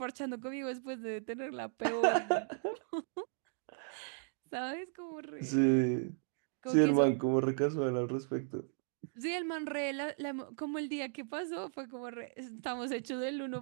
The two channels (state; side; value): silent; left; digital silence